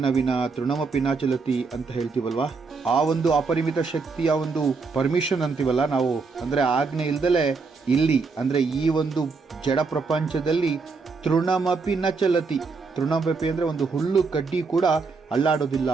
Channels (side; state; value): left; quieter; 4.5 dB